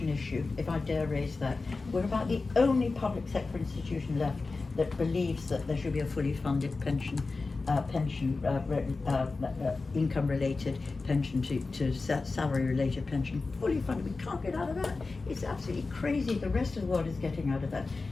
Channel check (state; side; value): quieter; right; 3.8 dB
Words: issue, if I dare raise that. We're about the only public sector institution left that believes that there should be a fully funded pension, income-related pension to salary-related pension, fully funded. We can't get out of that. It's absolutely crazy. The rest of the world is getting out of that.